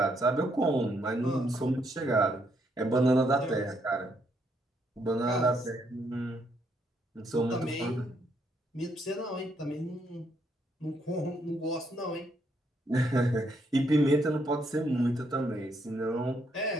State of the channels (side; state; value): both; normal; correlation 0.74